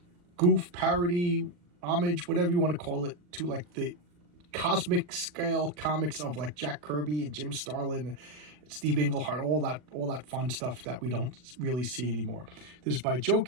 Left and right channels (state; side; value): late; left; 40 ms